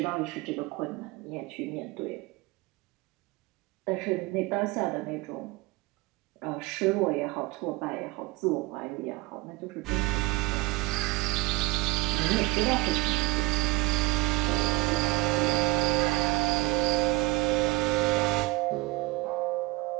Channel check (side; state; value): left; quieter; 20.6 dB